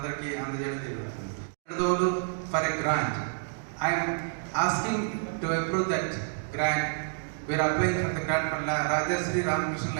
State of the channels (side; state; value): left; silent; digital silence